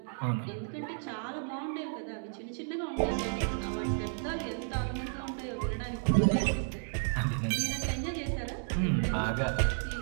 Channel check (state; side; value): silent; left; 56 dB below the other